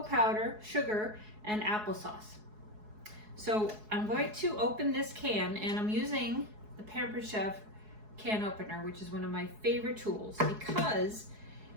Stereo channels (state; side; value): late; left; 4.7 ms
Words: powder, sugar, and applesauce. So I'm going to open this can, and I'm using the Pampered Chef can opener, which is one of my favorite tools because